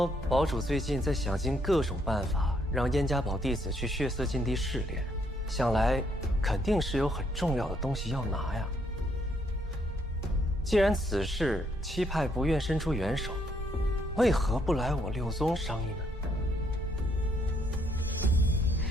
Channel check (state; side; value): normal; both; correlation 0.72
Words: 堡主最近在想尽各种办法，让燕家堡弟子去血色禁地试炼，想来肯定是有很重要的东西要拿呀。既然此事七派不愿伸出援手，为何不来我六宗商议呢？